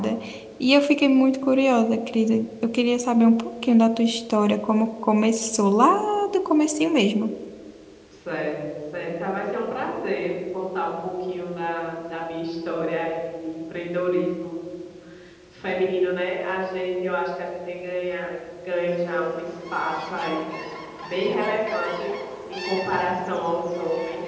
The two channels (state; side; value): identical; both; correlation 1.00